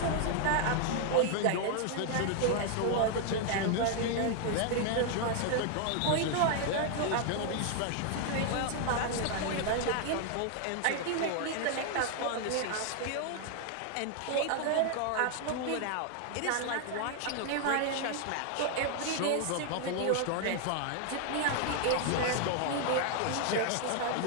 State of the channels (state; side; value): different; both; correlation 0.00